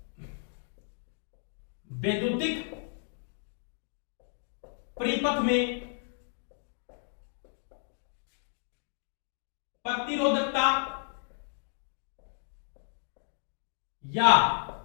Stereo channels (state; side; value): silent; right; digital silence